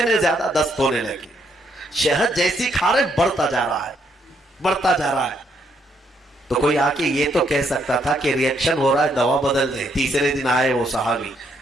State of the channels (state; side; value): normal; both; correlation 0.73